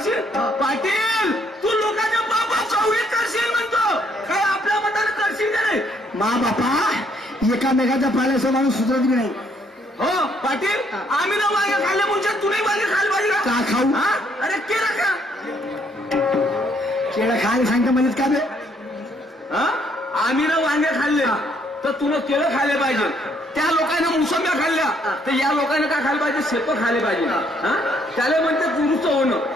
पाटील तू लोकांच्या बाबा चौळीत करशील म्हणतो, काय आपल्या मताने करशील का नाही? मा बापा एकामेकाच्या पाल्याचा माणूस सुधरत बी नाही. हो पाटील, आम्ही ना मागे खाल्ले मुंच्या तुम्ही मागे खाल पाहिजे का खाऊ? हा? अरे केलं का? केळं खायला सांगता म्हणत का बे? हा? आम्ही ना वांगे खाल्ले तर तुला केळं खायला पाहिजे. त्या लोकांना मोसंब्या खाल्ल्या तर या लोकांना काय खायला पाहिजे? शेतं खायला पाहिजे. हा, त्याला म्हणते दुरुस्त होणं.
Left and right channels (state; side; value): normal; both; correlation 0.68